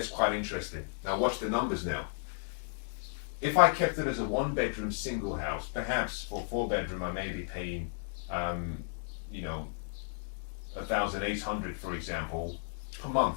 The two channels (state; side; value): silent; right; digital silence